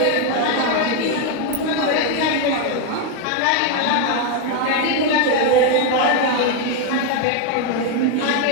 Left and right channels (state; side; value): different; both; correlation 0.01